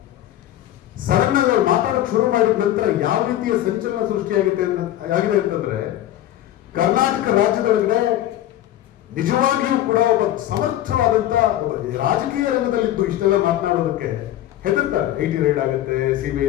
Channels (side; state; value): right; quieter; 13.2 dB